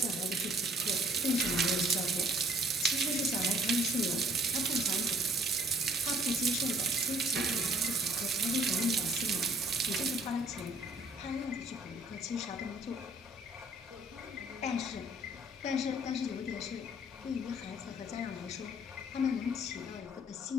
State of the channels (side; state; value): both; normal; correlation 0.59